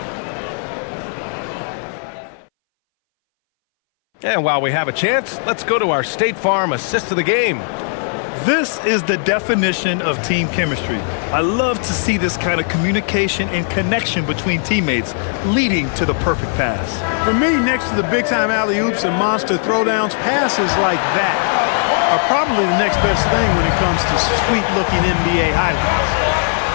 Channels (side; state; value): right; silent; 63 dB below the other